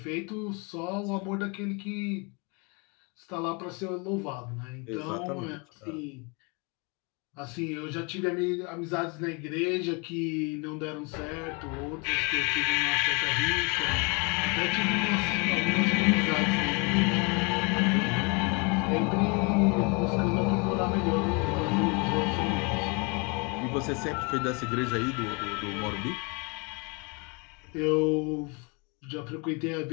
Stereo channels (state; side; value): quieter; right; 31.4 dB